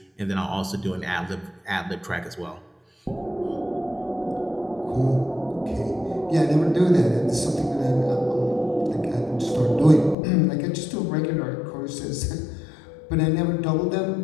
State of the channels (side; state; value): right; drops out; at 10.2 s